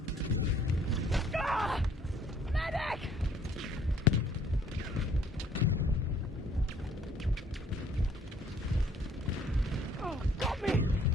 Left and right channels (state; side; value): normal; both; correlation 0.61